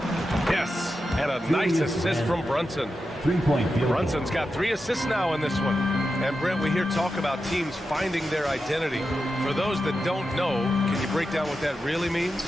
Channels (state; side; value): normal; both; correlation 0.89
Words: Yes, and a nice assist from Brunson. 3-point field goal. Brunson's got 3 assists now in this one. And Brent, we hear talk about teams finding their identity. For those that don't know, can you break down what that really means?